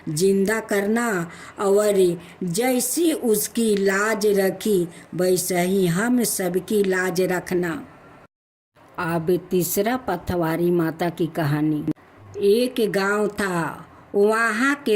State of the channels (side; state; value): both; identical; correlation 1.00